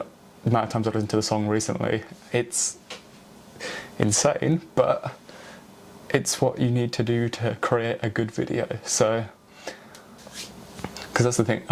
the amount of times I've listened to the song recently, it's insane, but it's what you need to do to create a good video. So, because that's the thing,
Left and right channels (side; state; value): both; identical; correlation 1.00